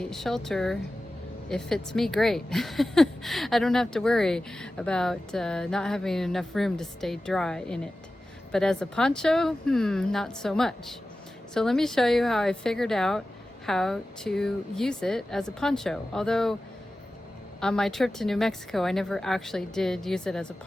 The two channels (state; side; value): normal; both; correlation 0.95